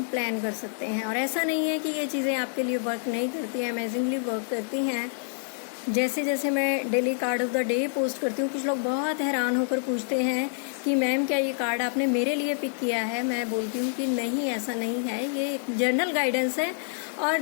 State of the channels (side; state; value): right; silent; digital silence